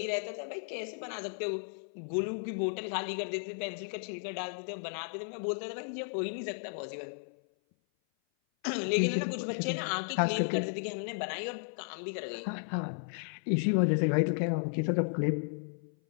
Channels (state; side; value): silent; right; 55 dB below the other